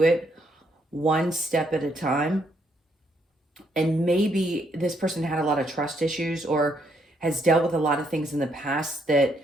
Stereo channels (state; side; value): normal; both; correlation 0.73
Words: it one step at a time. And maybe this person had a lot of trust issues or has dealt with a lot of things in the past that